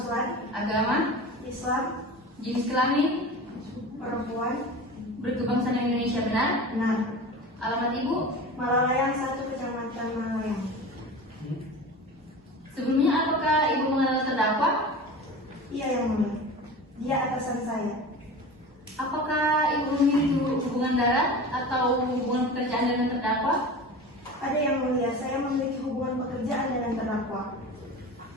agama, Islam, jenis kelamin, perempuan, berkebangsaan Indonesia benar, benar. alamat ibu, Malalayang 1, Kecamatan Malalayang. sebelumnya apakah ibu mengenal terdakwa? Iya, yang mulia. Dia atasan saya. Apakah ibu memiliki hubungan darat atau hubungan pekerjaan dengan terdakwa? Ada yang mulia, saya memiliki hubungan pekerjaan dengan terdakwa.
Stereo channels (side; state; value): both; normal; correlation 0.33